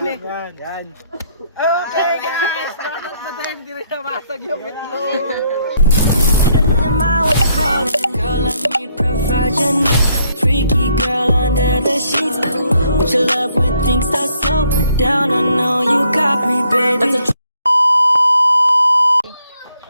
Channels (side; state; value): both; inverted; correlation -0.70